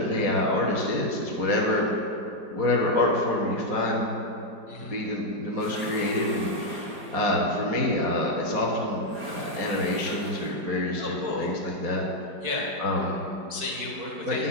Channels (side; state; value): left; late; 4.9 ms